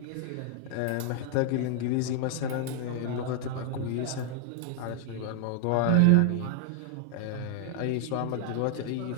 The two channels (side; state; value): both; different; correlation 0.00